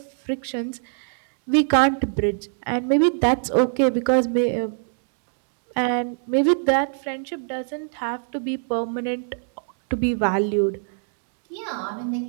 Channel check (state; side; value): silent; left; digital silence